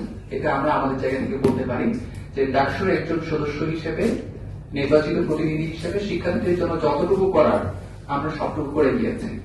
এটা আমরা আমাদের জায়গা থেকে বলতে পারি যে ডাকসুর একজন সদস্য হিসেবে, নির্বাচিত প্রতিনিধি হিসেবে শিক্ষার্থীদের জন্য যতটুকু করার আমরা সবটুকু করে গিয়েছি।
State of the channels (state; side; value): identical; both; correlation 1.00